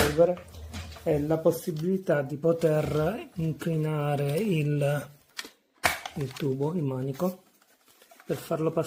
è la possibilità di poter inclinare il tubo, il manico, per farlo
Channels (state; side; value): identical; both; correlation 1.00